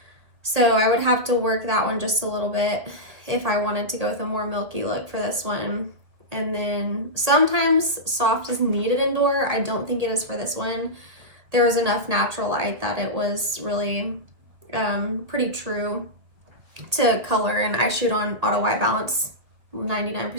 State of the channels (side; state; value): left; late; 2.0 ms